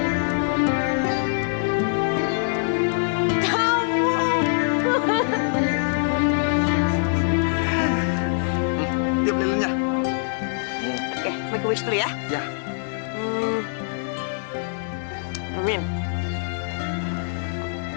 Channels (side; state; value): right; silent; digital silence